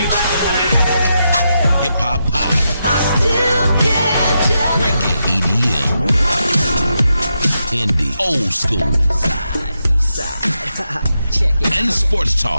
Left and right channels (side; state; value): both; inverted; correlation -0.84